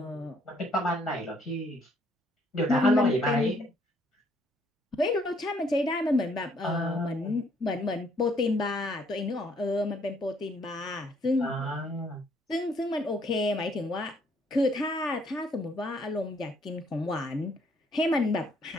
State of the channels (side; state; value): both; normal; correlation 0.66